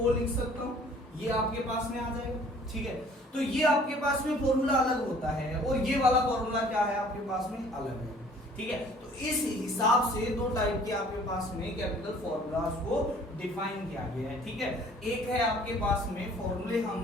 लिख सकता हूं, ये आपके पास में आ जाएगा। ठीक है, तो ये आपके पास में फॉर्मूला अलग होता है और ये वाला फॉर्मूला क्या है आपके पास में अलग है। ठीक है, तो इस हिसाब से दो टाइप के आपके पास में केमिकल फॉर्मूलाज को डिफाइन किया गया है। ठीक है, एक है आपके पास में फॉर्मूले हम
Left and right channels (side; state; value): both; normal; correlation 0.54